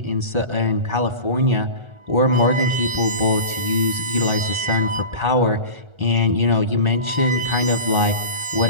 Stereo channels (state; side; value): late; left; 1.4 ms